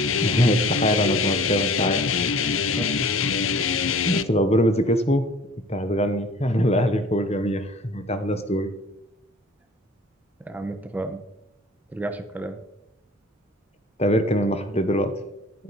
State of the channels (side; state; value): both; normal; correlation 0.47